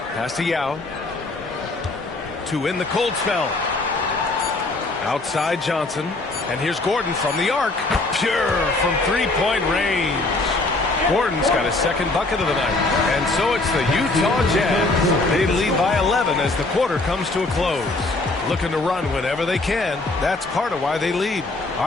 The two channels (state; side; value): quieter; right; 3.1 dB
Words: to Yao. To win the cold spell. Outside Johnson. And here's Gordon from the arc. Pure from three-point range. Gordon's got his second bucket of the night. And so it's the Utah Jazz. They lead by 11 as the quarter comes to a close. Looking to run whenever they can. That's part of why they lead. All